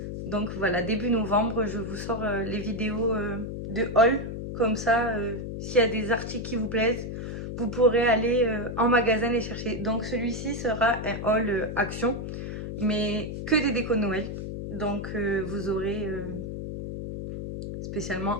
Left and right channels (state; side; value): noise; left; hum, 6 dB below the sound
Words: Donc voilà, début novembre, je vous sors les vidéos de haul. Comme ça, s'il y a des articles qui vous plaisent, vous pourrez aller en magasin les chercher. Donc celui-ci sera un haul action, mais que des décos de Noël. Donc vous aurez spécialement